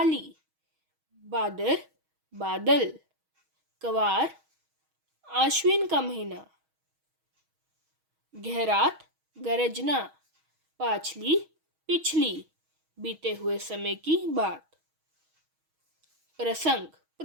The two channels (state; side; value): late; left; 6.3 ms